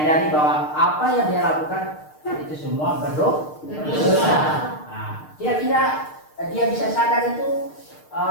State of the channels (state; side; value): late; right; 6.6 ms